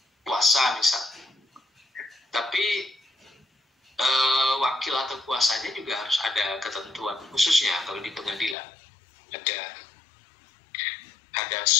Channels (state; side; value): drops out; right; at 8.6 s